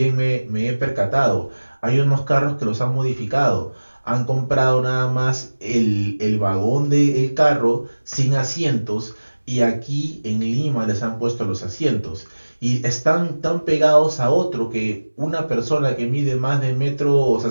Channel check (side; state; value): both; inverted; correlation -1.00